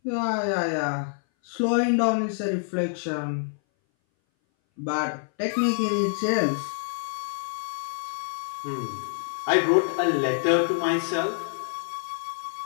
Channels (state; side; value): silent; right; 59 dB below the other